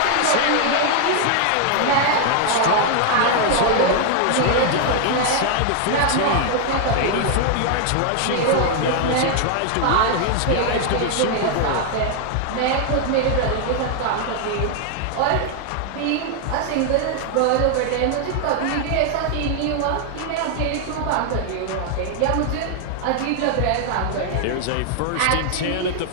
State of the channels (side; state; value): both; different; correlation 0.00